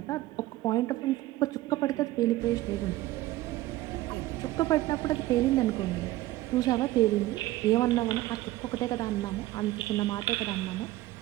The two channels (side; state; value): left; quieter; 16.6 dB